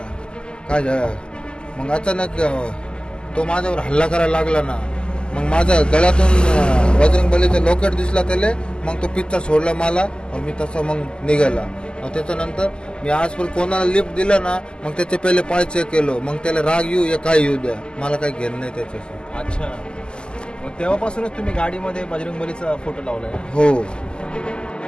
काय मग अचानक तो माझ्यावर हल्ला करायला लागला ना. मग माझ्या गळ्यातून बजरंगबलीचं लॉकेट दिसला त्याला. मग तो पिच्चा सोडला मला आणि मी तसं मग निघाला. त्याच्यानंतर मी आजपर्यंत कोणाला लिफ्ट दिलं ना मग त्याचे पहिले पाय चेक केलो. मग त्याला राग येऊ या काय येऊ द्या, मला काही घेणं नाही त्याच्याशी. अच्छा, मग तेव्हापासूनच तुम्ही गाडीमध्ये बजरंगबलीचा फोटो लावलाय? हो.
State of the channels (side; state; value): right; late; 0.048 ms